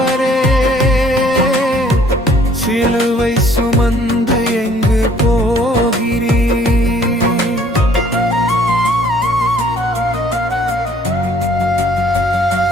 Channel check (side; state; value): both; normal; correlation 0.59